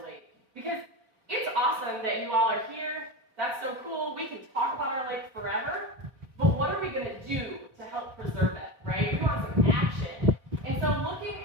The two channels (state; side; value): late; left; 4.7 ms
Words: lake. Because it's awesome that you all are here. That's so cool. We can talk about our lake forever. But what are we going to do to help preserve it, right? We want some action. And so looking